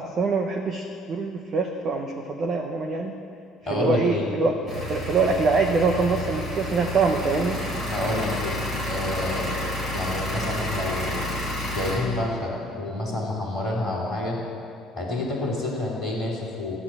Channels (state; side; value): normal; both; correlation 0.58